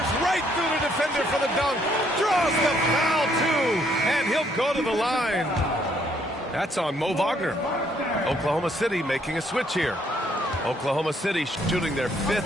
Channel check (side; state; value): both; normal; correlation 0.68